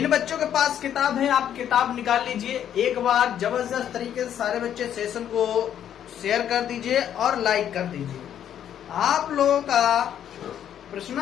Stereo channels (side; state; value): right; quieter; 9.9 dB